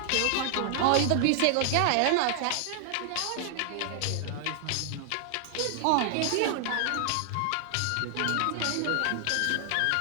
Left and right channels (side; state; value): both; different; correlation 0.00